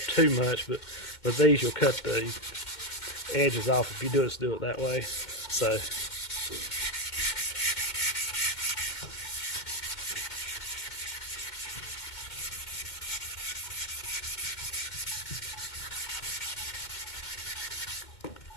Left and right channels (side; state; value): right; late; 2.1 ms